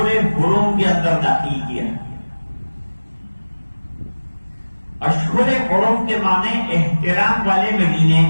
حرم کے اندر داخل کیا. اشہر حرم کے معنی احترام والے مہینے،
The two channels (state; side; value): inverted; both; correlation -1.00